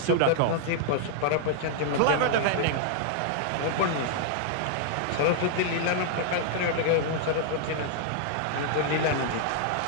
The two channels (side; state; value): both; different; correlation -0.01